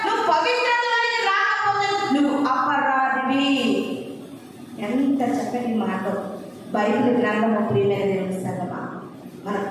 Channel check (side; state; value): both; identical; correlation 1.00